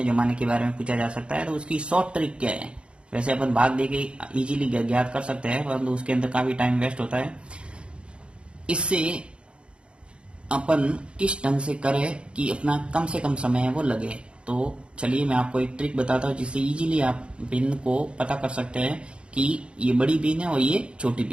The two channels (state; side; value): late; left; 0.056 ms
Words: जमाने के बारे में पूछा जा सकता है। तो उसकी शॉर्ट ट्रिक क्या है? वैसे अपन भाग दे के इजीली ज्ञात कर सकते हैं, परंतु उसके अंदर काफी टाइम वेस्ट होता है। इससे अपन किस ढंग से करें कि अपना कम से कम समय है वो लगे। तो चलिए मैं आपको एक ट्रिक बताता हूँ जिससे इजीली आप बिन को पता कर सकते हैं कि ये बड़ी बीन है और ये छोटी